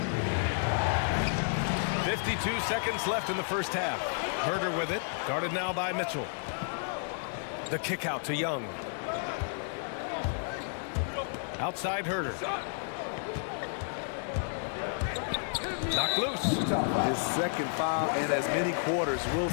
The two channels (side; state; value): right; silent; digital silence